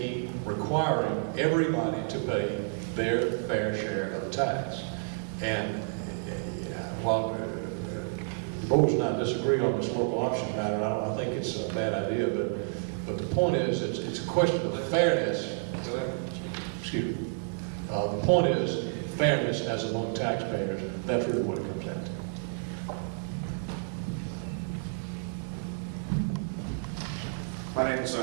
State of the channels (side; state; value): left; silent; digital silence